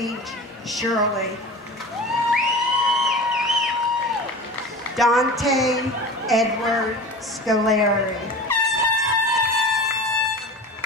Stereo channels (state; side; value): normal; both; correlation 0.34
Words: Shirley. Dante Edward Scoleri.